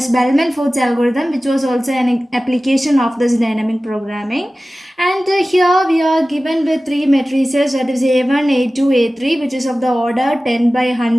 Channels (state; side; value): normal; both; correlation 0.96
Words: Bellman-Ford's algorithm, which was also an application of this dynamic programming. And here we are given with three matrices, that is A1, A2, A3, which is of the order 10 by